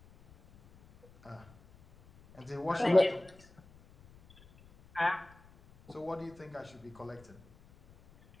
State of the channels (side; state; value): left; noise; rumble, 25 dB below the sound